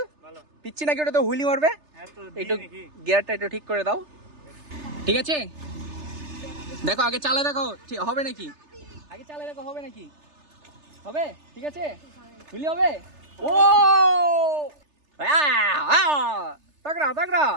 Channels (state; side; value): late; left; 3.3 ms